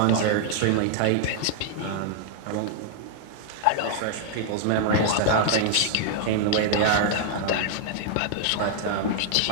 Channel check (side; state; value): both; different; correlation -0.01